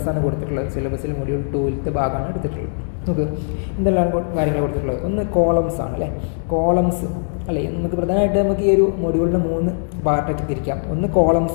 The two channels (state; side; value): silent; right; digital silence